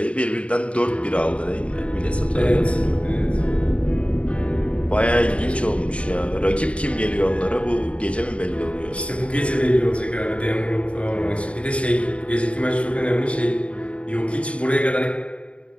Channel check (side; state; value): right; late; 0.061 ms